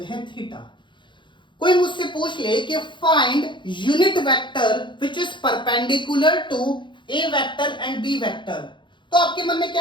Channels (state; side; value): late; right; 0.23 ms